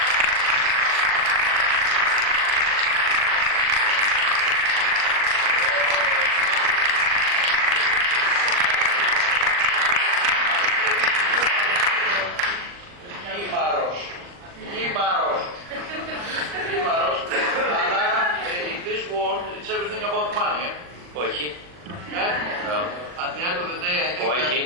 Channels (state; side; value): late; left; 40 ms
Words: It's everything about money. Όχι. No. At the end of the day, I think Όχι.